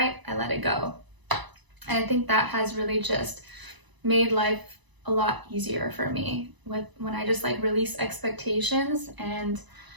I let it go. And I think that has really just made life a lot easier for me when I just like release expectations and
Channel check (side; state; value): left; late; 1.0 ms